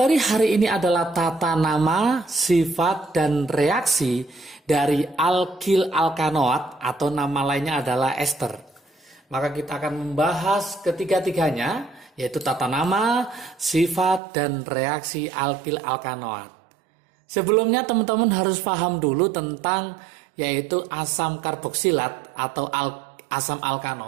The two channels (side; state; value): left; drops out; at 14.2 s